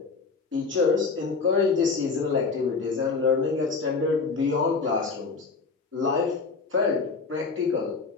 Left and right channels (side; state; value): right; quieter; 4.6 dB